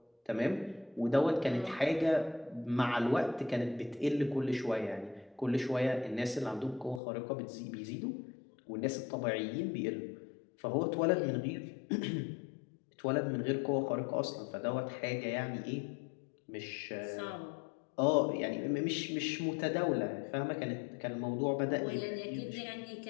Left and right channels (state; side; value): drops out; right; at 7.0 s